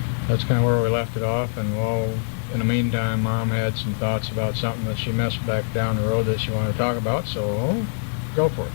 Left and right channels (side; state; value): right; silent; digital silence